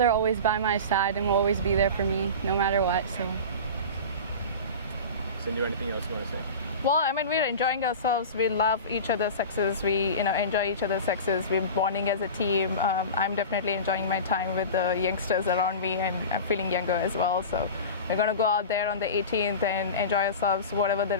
always by my side and will always be there for me no matter what. So. Sindhu, anything else you want to say? Well, I mean, we're enjoying ourselves. We love each other's success. We, enjoy each other's success. We're bonding as a team. I'm definitely enjoying my time with the youngsters around me, and I'm feeling younger as well. So we're going to go out there on the 18th and enjoy ourselves. Whatever the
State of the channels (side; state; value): both; inverted; correlation -0.31